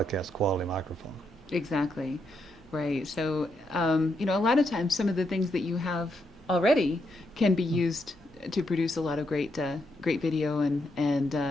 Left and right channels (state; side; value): normal; both; correlation 0.80